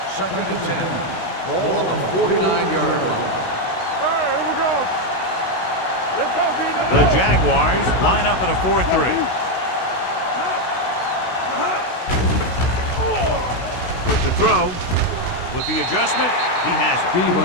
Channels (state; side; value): late; right; 16 ms